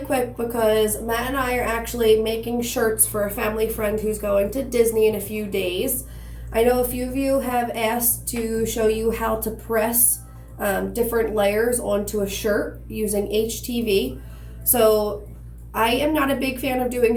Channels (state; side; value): identical; both; correlation 1.00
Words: because Matt and I are actually making shirts for a family friend who's going to Disney in a few days. I know a few of you have asked to show you how to press different layers onto a shirt using HTV. So I am not a big fan of doing